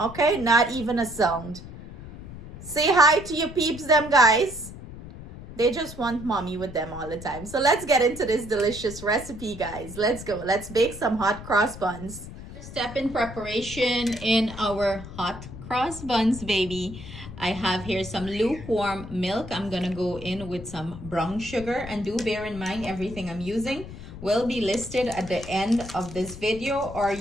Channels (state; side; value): noise; left; rumble, 13 dB below the sound